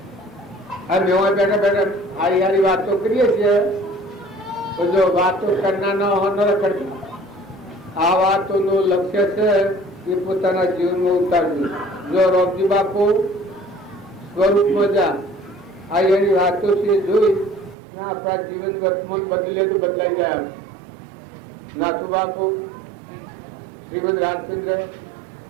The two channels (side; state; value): left; drops out; at 17.8 s